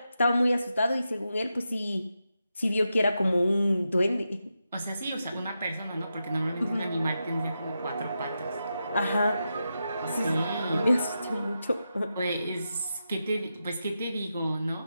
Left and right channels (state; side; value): inverted; both; correlation -0.88